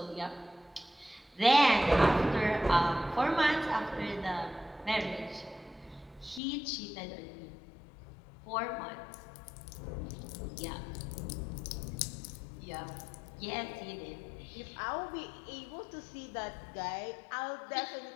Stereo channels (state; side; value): drops out; right; at 6.4 s